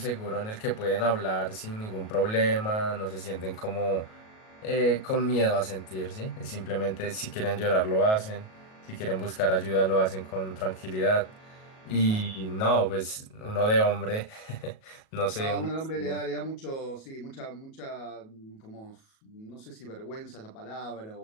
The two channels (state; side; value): late; right; 37 ms